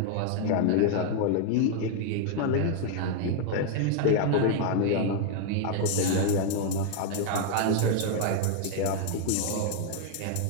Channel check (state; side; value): different; both; correlation 0.00